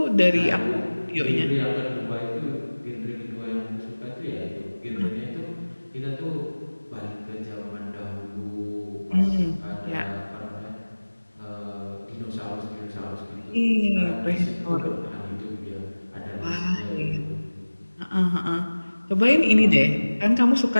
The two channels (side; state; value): both; inverted; correlation -1.00